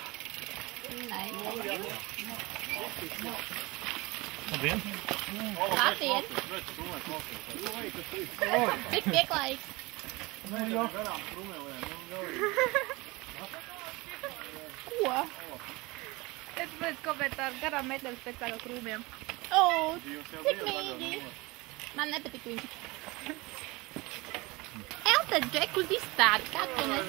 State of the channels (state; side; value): quieter; left; 23.3 dB